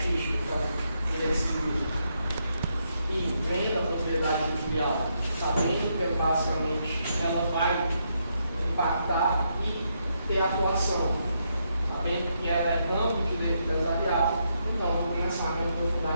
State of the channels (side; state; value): both; inverted; correlation -0.79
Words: então, direito civil, e vem da propriedade industrial, sabendo que basicamente ela vai impactar e ter atuação, sabendo que ela é ramo do direito empresarial, então vou começar a me aprofundar